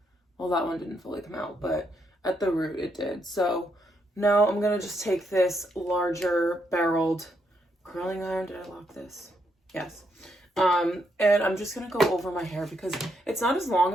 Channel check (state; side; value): normal; both; correlation 0.77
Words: well, that one didn't fully come out, but at the root it did. So now I'm gonna just take this larger barreled curling iron. Did I lock this? Yes. And I'm just gonna go over my hair because it's not as long